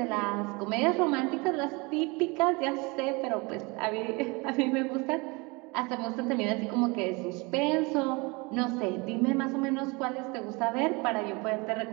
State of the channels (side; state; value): left; quieter; 27.1 dB